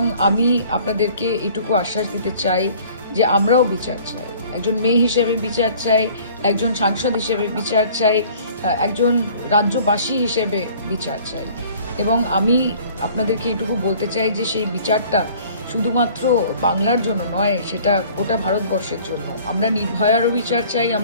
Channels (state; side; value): inverted; both; correlation -0.52